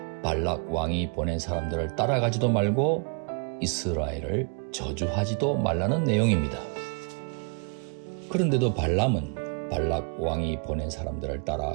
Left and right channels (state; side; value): quieter; left; 38.7 dB